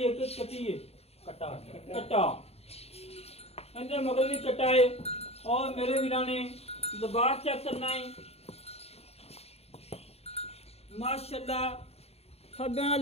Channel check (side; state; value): right; late; 0.30 ms